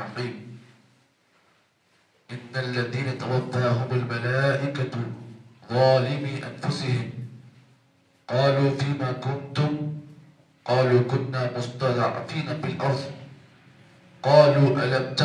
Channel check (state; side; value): identical; both; correlation 1.00